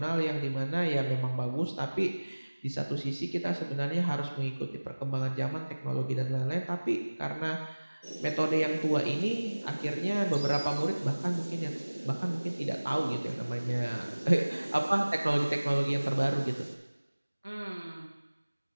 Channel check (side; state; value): both; inverted; correlation -1.00